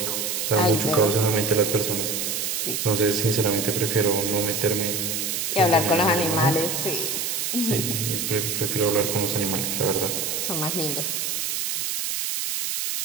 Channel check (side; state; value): right; noise; hiss, 1 dB below the sound